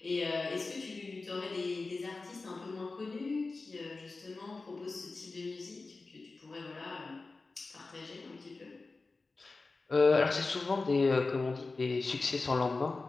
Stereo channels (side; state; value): right; quieter; 3.7 dB